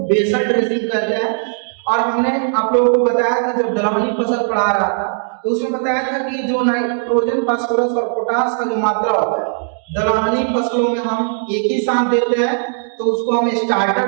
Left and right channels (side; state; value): left; silent; digital silence